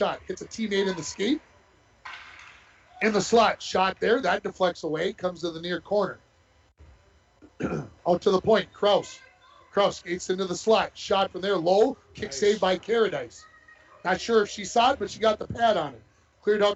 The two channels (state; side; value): identical; both; correlation 1.00